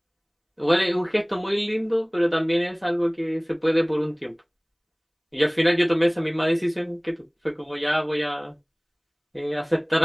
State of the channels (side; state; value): both; identical; correlation 1.00